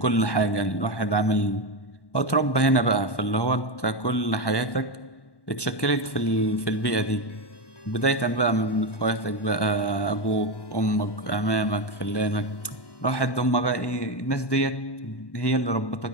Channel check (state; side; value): late; right; 1.1 ms